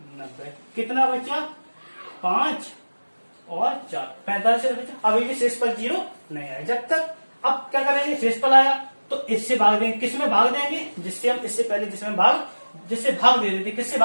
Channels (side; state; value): both; inverted; correlation -1.00